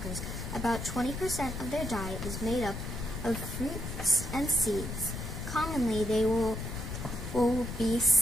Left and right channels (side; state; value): left; noise; rumble, 7 dB below the sound